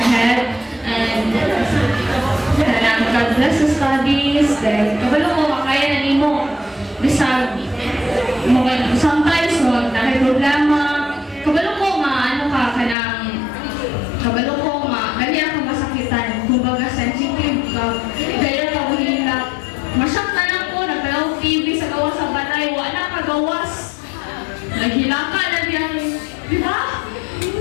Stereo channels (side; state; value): right; drops out; at 13.0 s